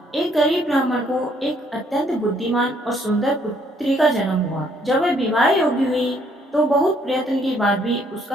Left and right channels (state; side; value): normal; both; correlation 0.66